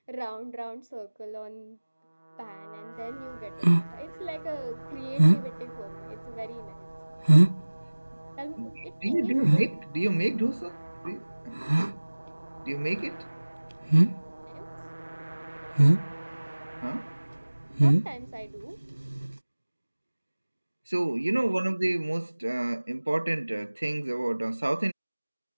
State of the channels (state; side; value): inverted; both; correlation -1.00